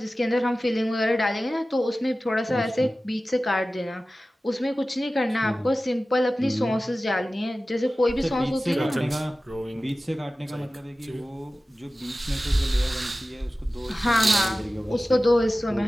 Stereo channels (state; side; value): normal; both; correlation 0.96